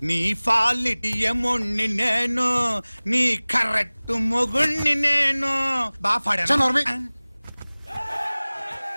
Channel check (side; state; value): both; inverted; correlation -1.00